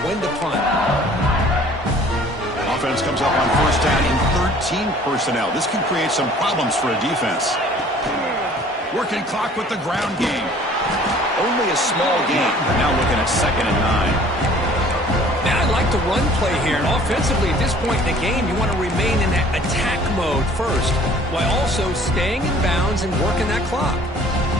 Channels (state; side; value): normal; both; correlation 0.52